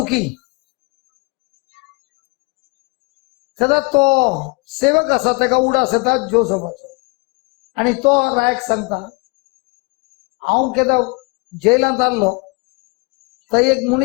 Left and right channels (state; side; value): quieter; right; 30.0 dB